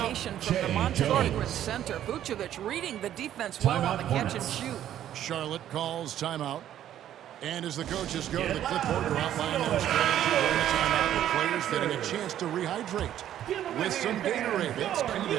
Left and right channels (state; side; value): quieter; left; 11.4 dB